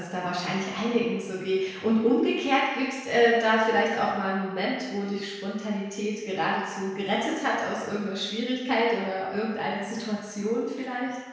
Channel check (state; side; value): identical; both; correlation 1.00